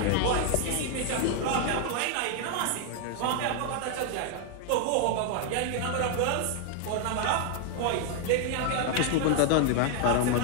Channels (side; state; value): both; different; correlation 0.00